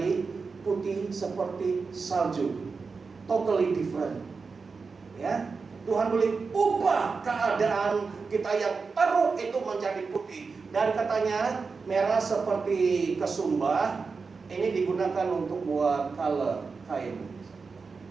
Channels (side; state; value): left; quieter; 4.7 dB